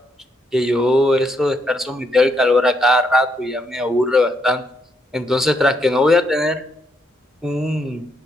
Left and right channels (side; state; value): both; normal; correlation 0.76